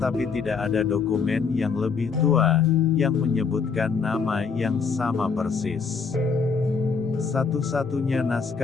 tidak ada dokumen yang lebih tua yang menyebutkan nama yang sama persis. Satu-satunya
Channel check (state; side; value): quieter; right; 5.4 dB